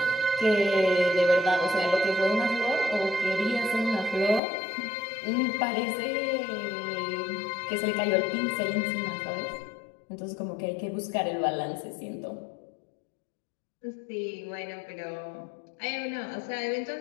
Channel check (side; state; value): right; drops out; at 4.4 s